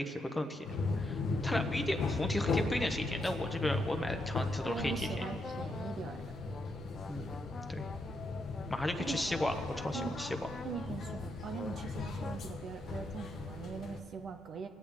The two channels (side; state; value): both; normal; correlation 0.80